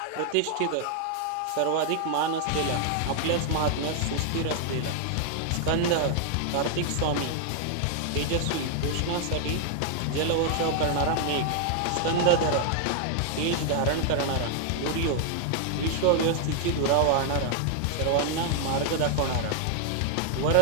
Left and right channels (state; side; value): different; both; correlation 0.00